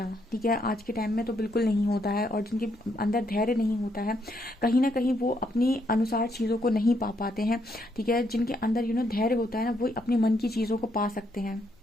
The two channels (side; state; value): both; normal; correlation 0.75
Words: ठीक है, आज के टाइम में तो बिल्कुल नहीं होता है, और जिनके अंदर धैर्य नहीं होता है, कहीं ना कहीं वो अपनी अनुसार चीज़ों को नहीं पा पाते हैं। ठीक है, जिनके अंदर धैर्य होता है ना, वो अपने मन की चीज़ों को पा सकते हैं।